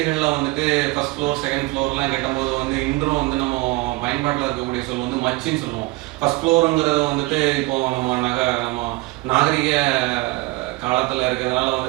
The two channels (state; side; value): quieter; left; 22.0 dB